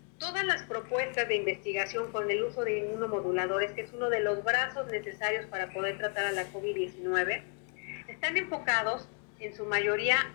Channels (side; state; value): right; quieter; 37.5 dB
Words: todas las propuestas de investigación con el uso de inmunomoduladores, que es uno de los brazos necesarios para poder tratar a la COVID-19, están enfocados en su mayoría